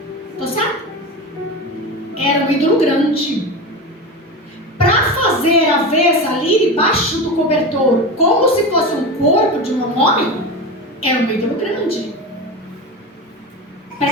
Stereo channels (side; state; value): both; normal; correlation 0.24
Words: Tô certo? Era um ídolo grande. Para fazer a vez ali debaixo do cobertor, como se fosse um corpo de um homem, era um ídolo grande.